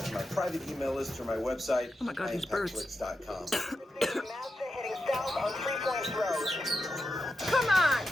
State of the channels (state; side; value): normal; both; correlation 0.88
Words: to my private email list or my website, Oh my God, these birds. IAmpactFlix.com. Heading south on 3 Points Road. Come on!